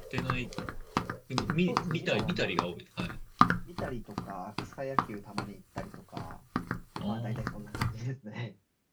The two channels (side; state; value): both; identical; correlation 1.00